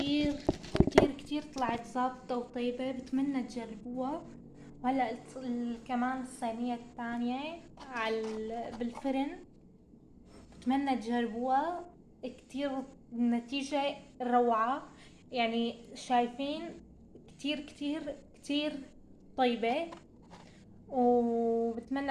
كتير كتير طلعت ظابطة وطيبة، بتمنى تجربوها. وهلا كمان الصينية الثانية بالفرن، بتمنى تجربوها. كتير النتيجة روعة، يعني شايفين؟ كتير كتير كتير طيبة،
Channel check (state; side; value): identical; both; correlation 1.00